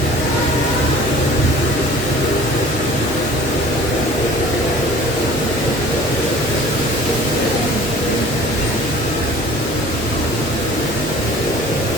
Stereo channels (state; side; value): normal; both; correlation 0.47